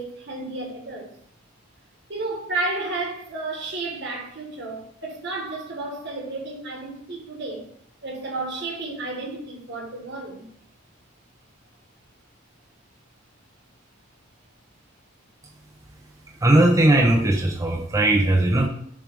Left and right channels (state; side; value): normal; both; correlation 0.67